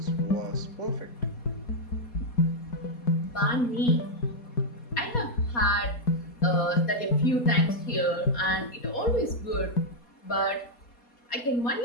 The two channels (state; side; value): late; right; 4.2 ms